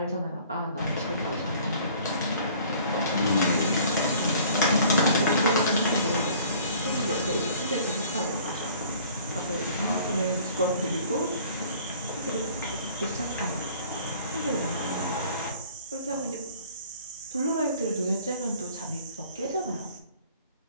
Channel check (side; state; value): both; inverted; correlation -0.52